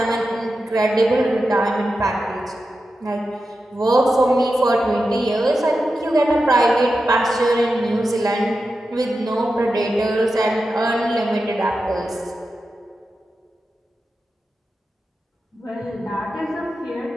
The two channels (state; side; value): normal; both; correlation 0.90